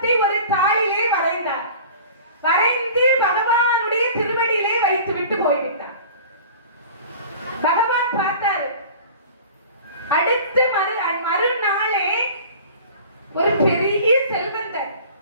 ஒரு தாளிலே வரைந்தார். வரைந்து பகவானுடைய திருவடியிலே வைத்து விட்டு போய்விட்டார். பகவான் பார்த்தாரு. அடுத்த மறுநாளே ஒரு பெரிய செல்வந்தர்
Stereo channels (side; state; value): both; inverted; correlation -0.42